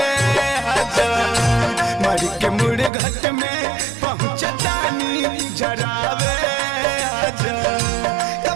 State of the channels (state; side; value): drops out; left; at 2.9 s